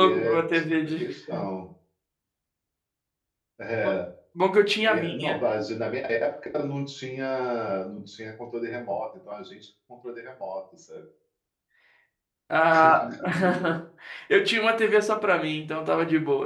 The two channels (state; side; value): identical; both; correlation 1.00